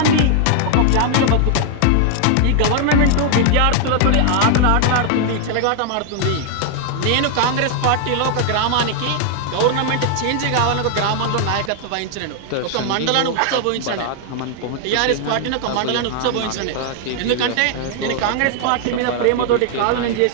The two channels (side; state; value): both; different; correlation 0.00